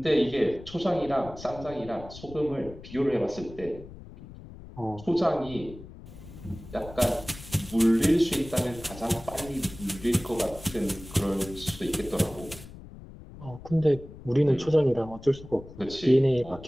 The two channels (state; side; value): noise; left; rumble, 16 dB below the sound